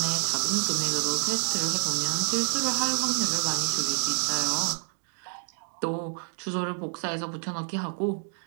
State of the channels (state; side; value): silent; left; 59 dB below the other